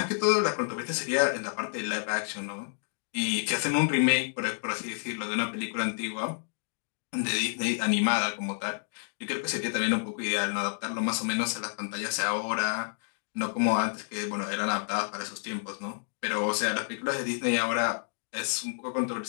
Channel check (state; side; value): silent; right; digital silence